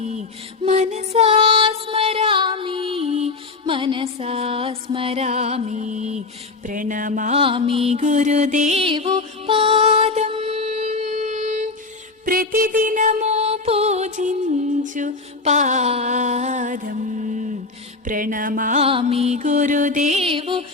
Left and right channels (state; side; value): quieter; right; 3.8 dB